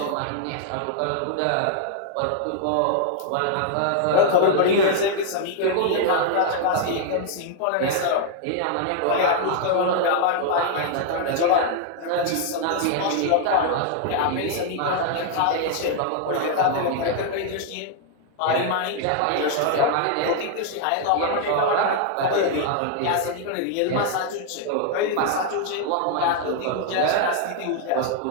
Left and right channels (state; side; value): different; both; correlation 0.00